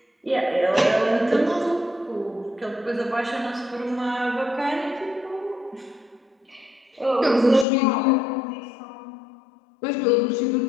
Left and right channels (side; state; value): right; drops out; at 7.7 s